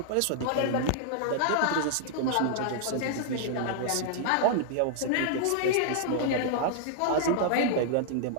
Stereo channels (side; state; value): both; different; correlation -0.01